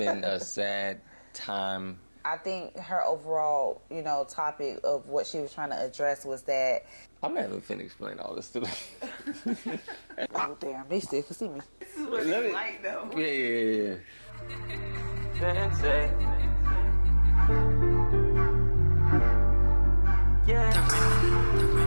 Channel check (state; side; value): inverted; both; correlation -1.00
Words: a sad time. I think her overall, topic of what she was trying to address was that. I'm not even finna explain all this to them. Oh, damn, they still can see me. This is what it's like, though. Yeah. Sensei. Yeah.